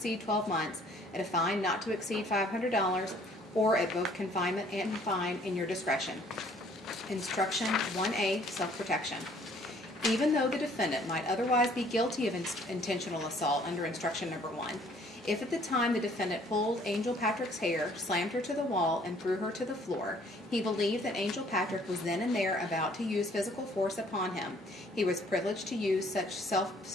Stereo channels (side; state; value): both; normal; correlation 0.59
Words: 12 months, at a fine not to exceed $500, or at both confinement and fine in your discretion. Instruction 1A, self-protection. Even though the defendant might otherwise be guilty of intentional assault under instruction number 1, if at the time the defendant pulled Angel Patrick's hair, slammed her to the wall, and threw her to the floor, he believed that Angel Patrick was then and there about to use physical force upon him, he was privileged to use